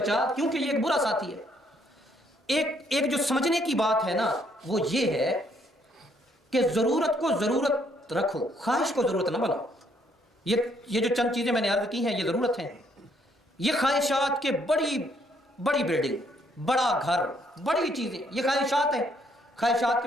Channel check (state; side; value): normal; both; correlation 0.69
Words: کیونکہ یہ ایک برا ساتھی ہے۔ ایک جو سمجھنے کی بات ہے نا وہ یہ ہے کہ ضرورت کو ضرورت رکھو، خواہش کو ضرورت نہ بناؤ۔ یہ جو چند چیزیں میں نے عرض کی ہیں یہ ضرورت ہیں، یہ خواہشات کے بڑی بلڈنگ، بڑا گھر، بڑی چیزیں، یہ خواہشات ہیں۔ خواہشات